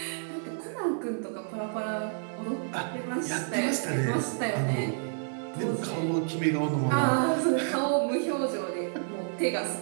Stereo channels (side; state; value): left; silent; 55 dB below the other